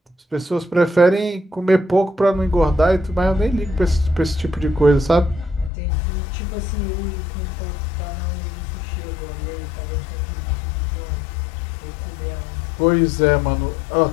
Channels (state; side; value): drops out; right; at 5.7 s